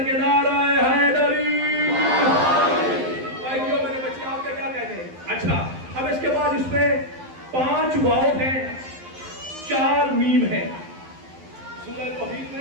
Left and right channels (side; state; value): left; late; 12 ms